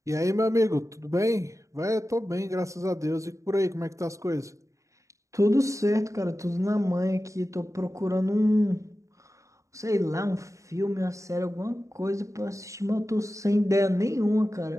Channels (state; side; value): late; left; 0.15 ms